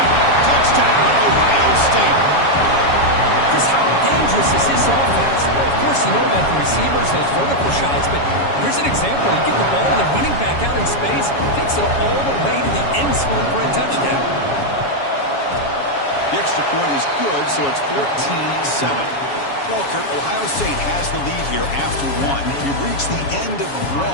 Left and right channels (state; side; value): late; right; 7.2 ms